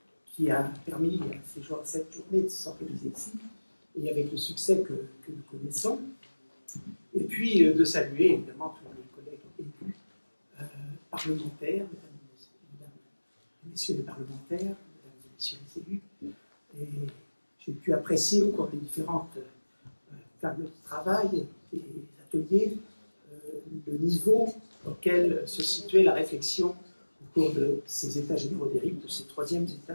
qui a permis à cette journée de s'organiser ici, et avec le succès que nous connaissons. Et puis de saluer évidemment tous les collègues élus, parlementaires, mesdames et messieurs les parlementaires, mesdames et messieurs les élus. Et j'ai pu apprécier au cours des différentes tables de travail et ateliers le niveau auquel se situait la réflexion au cours de ces états généraux des RIP, de ces troisièmes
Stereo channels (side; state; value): both; inverted; correlation -1.00